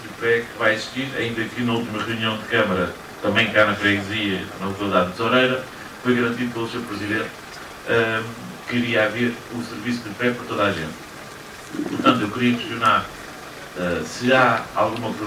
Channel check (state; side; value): identical; both; correlation 1.00